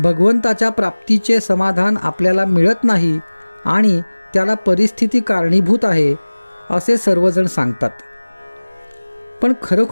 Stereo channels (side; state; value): both; inverted; correlation -1.00